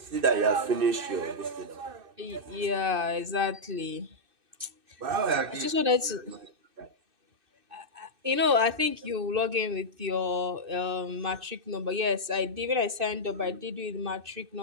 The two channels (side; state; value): left; late; 2.6 ms